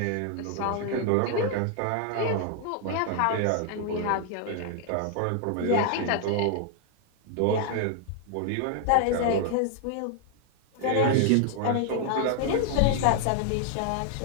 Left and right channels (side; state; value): both; different; correlation 0.00